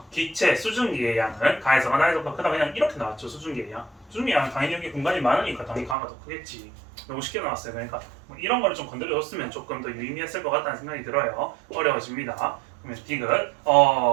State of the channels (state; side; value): drops out; left; at 6.0 s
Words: 기체 수증기의 양은 가에서가 나에서보다 크다. 그냥 이렇게 나왔죠. 수증기의 양. 수증기의 양은 당연히 여기 공간이 많으니까 당연히 가가 더 크겠지. 너무 쉽게 나왔어요. 그러니까 뭐 이런 거를 좀 건드려줬으면 조금 더 유의미했을 것 같다는 생각이 들어요. 어려워집니다. 그러면 디귿